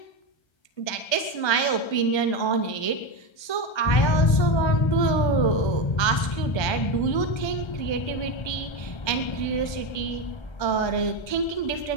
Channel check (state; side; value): late; right; 1.2 ms